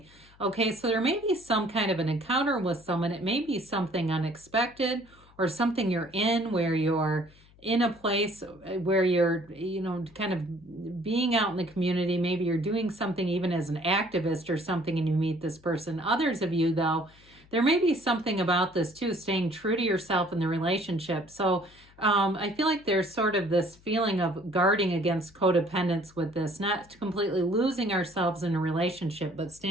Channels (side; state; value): left; noise; hum, 27 dB below the sound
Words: Okay, so there may be some kind of an encounter with someone. It may be something unexpected or something you're in where you're in a place where you're, you know, kind of being out in the community. Maybe you're doing something even as an activist or something and you meet this person. Others of you, though, there may be something about this too, staying true to yourself in the relationship. So I feel like there's sort of this feeling of guarding against codependence with this, not completely losing ourselves in a relationship, but